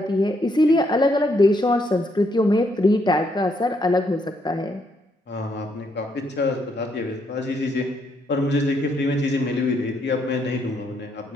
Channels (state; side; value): normal; both; correlation 0.74